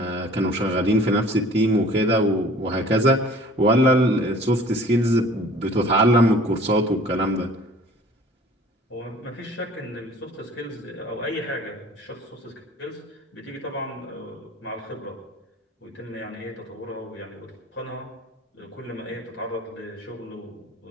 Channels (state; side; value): normal; both; correlation 0.49